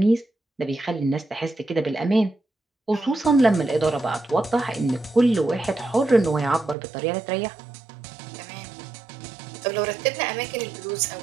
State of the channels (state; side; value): drops out; left; at 6.8 s